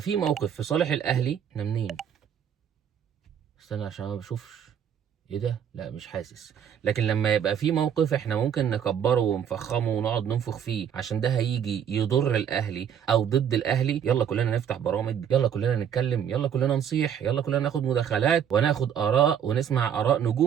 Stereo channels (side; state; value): left; quieter; 8.6 dB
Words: موقف في صالح الاهلي. احنا منين؟ استنى عشان ما بشوفش. ايه ده؟ لا مش حاسس. لكن لما يبقى في موقف احنا ممكن نكبره ونفخمه ونقعد ننفخ فيه عشان ده هيجي يضر الاهلي او ضد الاهلي، يلا كلنا نفتح برامج، يلا كلنا نتكلم، يلا كلنا نصيح، يلا كلنا ناخد مداخلات وناخد اراء ونسمع اراء